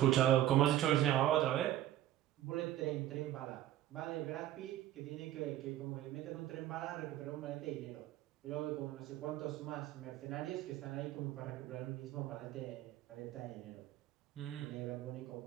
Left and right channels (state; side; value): quieter; left; 13.1 dB